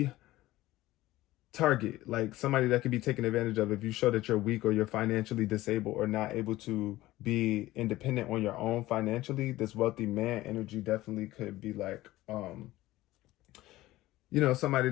target, like somebody that could be taken advantage of if you show that you're weak or you're financially disabled or not able to be independent on your own financially. This wealthy man energy definitely could be like somebody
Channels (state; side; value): quieter; right; 17.0 dB